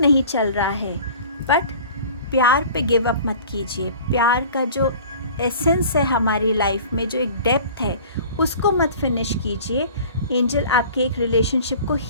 नहीं चल रहा है, बट प्यार पे गिव अप मत कीजिए। प्यार का जो एसेंस है हमारी लाइफ में, जो एक डेप्थ है, उसको मत फिनिश कीजिए। एंजल आपके एक रिलेशनशिप को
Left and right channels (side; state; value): both; inverted; correlation -0.44